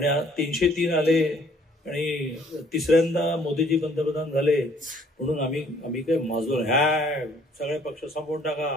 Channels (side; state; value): both; normal; correlation 0.60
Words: 303 आले आणि तिसऱ्यांदा मोदीजी पंतप्रधान झाले म्हणून आम्ही काय माजलो नाही. ह्या सगळे पक्ष संपवून टाका,